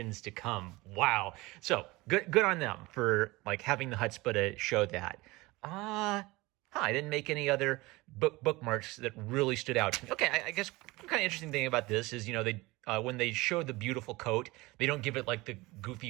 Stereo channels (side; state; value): left; quieter; 21.7 dB